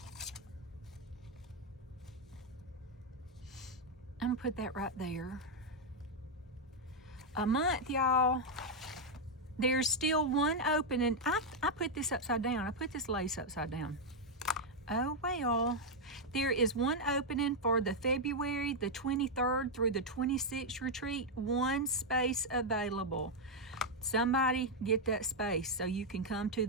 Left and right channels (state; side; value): normal; both; correlation -0.01